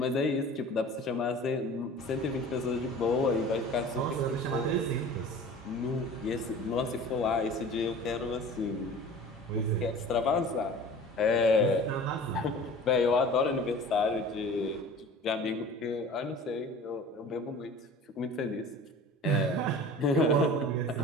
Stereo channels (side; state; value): both; normal; correlation 0.41